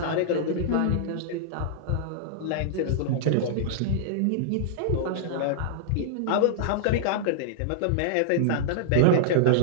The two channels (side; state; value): both; different; correlation -0.02